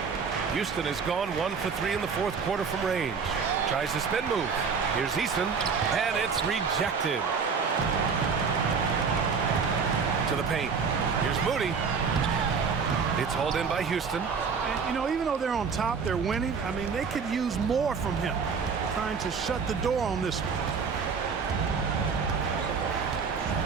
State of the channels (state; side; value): quieter; left; 5.7 dB